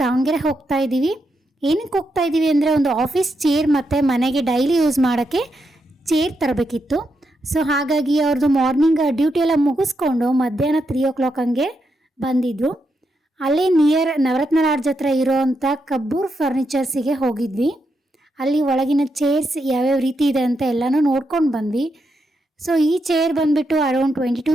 ದಾವಣಗೆರೆ ಹೋಗ್ತಾ ಇದ್ದೀವಿ. ಏನಕ್ಕೆ ಹೋಗ್ತಾ ಇದ್ದೀವಿ ಅಂದರೆ ಒಂದು ಆಫೀಸ್ ಚೇರ್ ಮತ್ತು ಮನೆಗೆ ಡೈಲಿ ಯೂಸ್ ಮಾಡೋಕ್ಕೆ ಚೇರ್ ತರಬೇಕಿತ್ತು. ಸೊ ಹಾಗಾಗಿ ಅವ್ರದ್ದು ಮಾರ್ನಿಂಗ್ ಡ್ಯೂಟಿ ಎಲ್ಲ ಮುಗಿಸ್ಕೊಂಡು ಮಧ್ಯಾಹ್ನ 3 ಹಂಗೆ ಬಂದಿದ್ದರು. ಅಲ್ಲೇ ನಿಯರ್ ನವರತ್ನ ಲಾಡ್ಜ್ ಹತ್ರ ಇರೋವಂಥ ಕಬ್ಬೂರ್ ಫರ್ನಿಚರ್ಸಿಗೆ ಹೋಗಿದ್ವಿ. ಅಲ್ಲಿ ಒಳಗಿನ ಚೇರ್ಸ್ ಯಾವ್ಯಾವ ರೀತಿ ಇದೆ ಅಂತ ಎಲ್ಲನೂ ನೋಡ್ಕೊಂಡು ಬಂದ್ವಿ. ಸೊ ಈ ಚೇರ್ ಬಂದುಬಿಟ್ಟು ಅರೌಂಡ್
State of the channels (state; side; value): normal; both; correlation 0.83